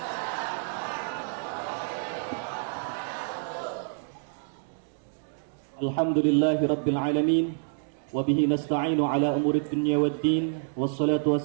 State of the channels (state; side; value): silent; left; digital silence